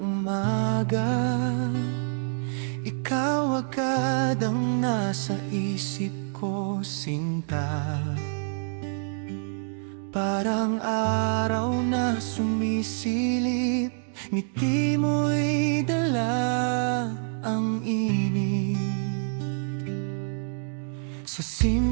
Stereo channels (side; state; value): left; silent; digital silence